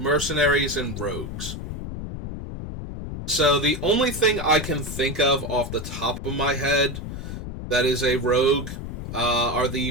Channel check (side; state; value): left; noise; rumble, 7 dB below the sound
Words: and rogues. So the only thing I can think of off the top of my head that is a rogue are the